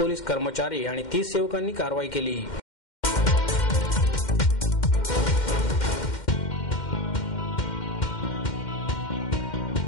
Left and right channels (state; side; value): late; right; 2.1 ms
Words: कर्मचारी आणि 30 सेवकांनी कारवाई केली.